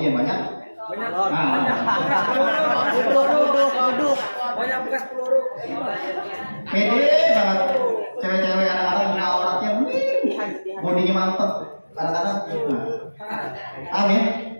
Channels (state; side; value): inverted; both; correlation -1.00